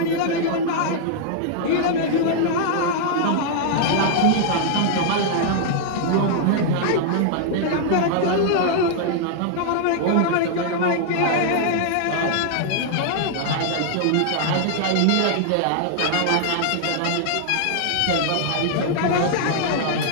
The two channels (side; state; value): both; different; correlation -0.01